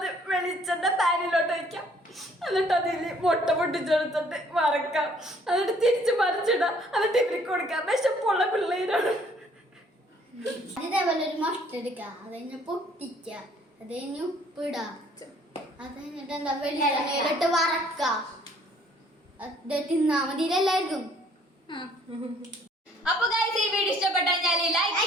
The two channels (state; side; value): normal; both; correlation 0.60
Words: വെളിച്ചെണ്ണ പാനിലോട്ട് വയ്ക്കാം. എന്നിട്ട് അതിൽ മുട്ട പൊട്ടിച്ചെടുത്തിട്ട് വറക്കാം. എന്നിട്ട് തിരിച്ച് മറിച്ചിടാം. എന്നിട്ട് ഇവർക്ക് കൊടുക്കാം. വിശപ്പുള്ള പിള്ളേരാണ്. ഇതേപോലെ ഒരു മുട്ട എടുക്കാം, അത് കഴിഞ്ഞ് പൊട്ടിക്ക, അത് കഴിഞ്ഞ് ഉപ്പിടാം, അത് കഴിഞ്ഞിട്ട് എന്താ വെളിച്ചെണ്ണയിലിട്ട് വറക്കാം. അത് തിന്നാ മതി എല്ലാവർക്കും. അപ്പൊ ഗൈസ്, ഈ വീഡിയോ ഇഷ്ടപ്പെട്ടാൽ ലൈക്ക്